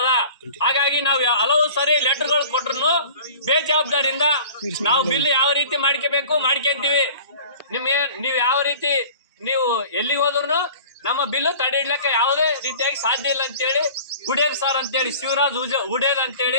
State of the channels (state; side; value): inverted; both; correlation -0.43